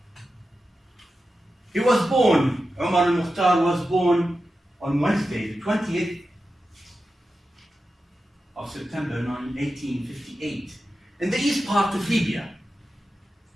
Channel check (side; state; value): both; normal; correlation 0.92